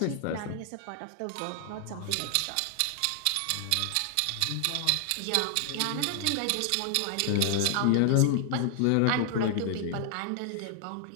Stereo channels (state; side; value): different; both; correlation 0.00